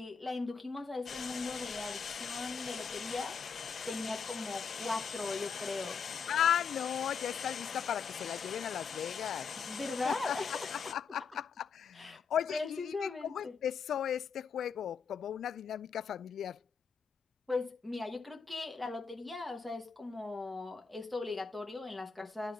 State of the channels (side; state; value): right; quieter; 6.0 dB